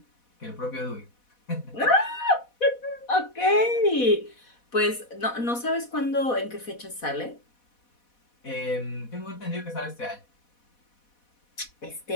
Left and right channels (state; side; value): late; right; 4.1 ms